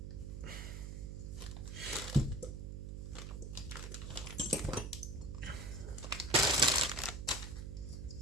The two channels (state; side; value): noise; right; hum, 6 dB below the sound